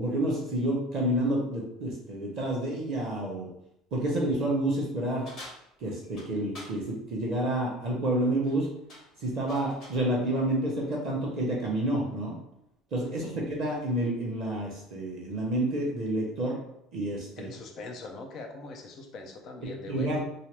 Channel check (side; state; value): both; normal; correlation 0.39